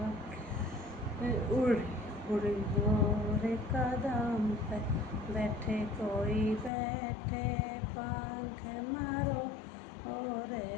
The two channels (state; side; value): drops out; right; at 6.7 s